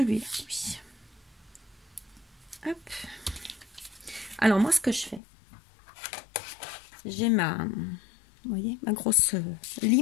oui. Hop. Alors, moi, ce que je fais, j'ai ma, vous voyez, ma grosse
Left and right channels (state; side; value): drops out; right; at 5.2 s